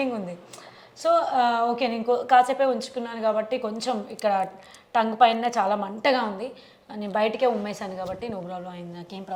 ఉంది. సో ఓకే, నేను కాసేపే ఉంచుకున్నాను కాబట్టి కొంచెం ఇక్కడ టంగ్ పైన చాలా మంటగా ఉంది. నేను బయటకే ఉమ్మేశాను కాబట్టి నో ప్రాబ్లం అయింది, నాకేం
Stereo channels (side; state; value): both; identical; correlation 1.00